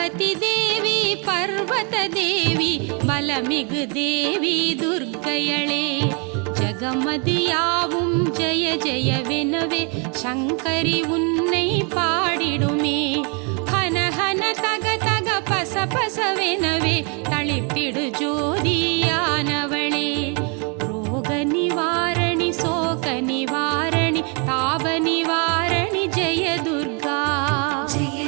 தேவி பர்வத தேவி பலமிகு தேவி துர்க்கையளே ஜகமதியாவும் ஜெய ஜெயவெனவே சங்கரி உன்னை பாடிடுமே ஹன ஹன தக தக பச பசவெனவே தளித்திடு ஜோதியானவளே ரோக நிவாரணி சோக நிவாரணி தாப நிவாரணி ஜெய துர்கா जय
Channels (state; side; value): quieter; left; 35.3 dB